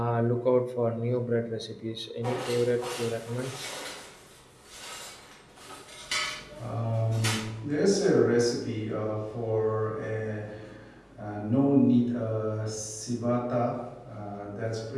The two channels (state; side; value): identical; both; correlation 1.00